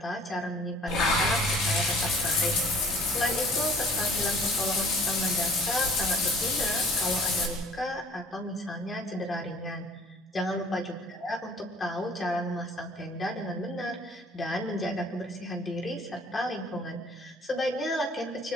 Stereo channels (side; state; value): both; normal; correlation 0.54